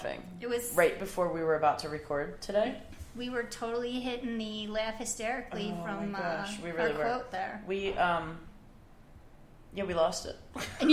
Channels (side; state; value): both; identical; correlation 1.00